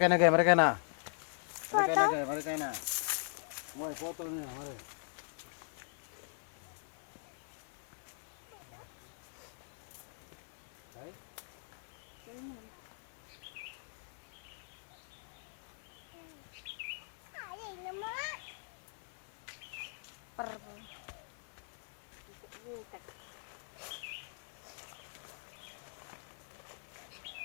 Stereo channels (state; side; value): silent; right; digital silence